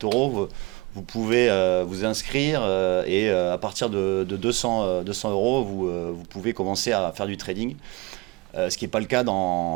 vous pouvez vous inscrire et à partir de 200 euros, vous pouvez commencer à faire du trading, ce qui n'est pas le cas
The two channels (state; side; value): quieter; left; 24.1 dB